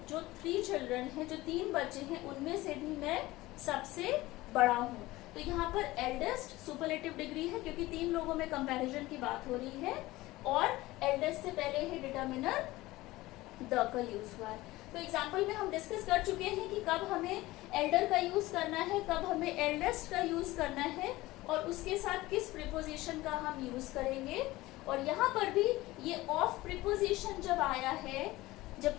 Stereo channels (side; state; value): right; quieter; 18.7 dB